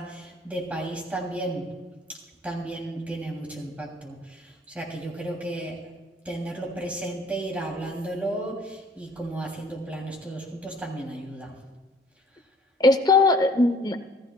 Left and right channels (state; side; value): normal; both; correlation 0.56